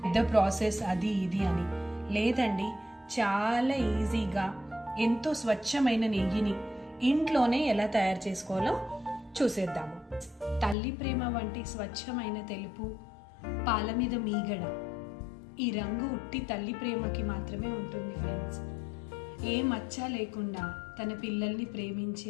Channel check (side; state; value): right; drops out; at 10.8 s